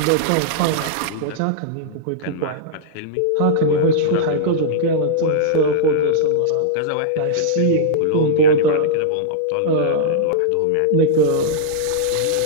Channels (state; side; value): different; both; correlation -0.02